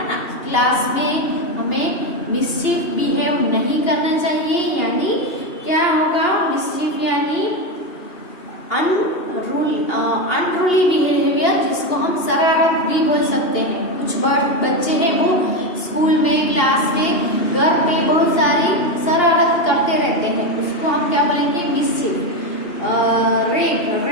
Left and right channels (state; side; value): late; right; 2.8 ms